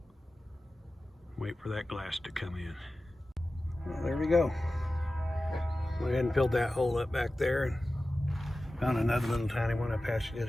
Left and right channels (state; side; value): normal; both; correlation 0.95